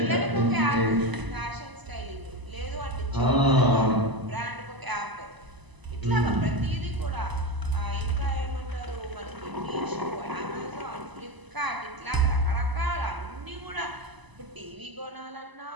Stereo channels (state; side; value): late; left; 1.0 ms